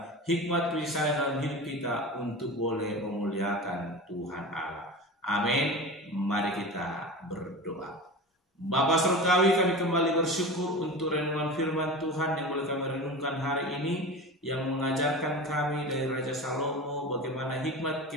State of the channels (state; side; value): normal; both; correlation 0.31